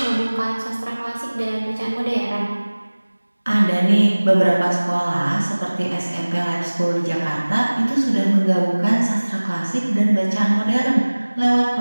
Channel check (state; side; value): inverted; both; correlation -1.00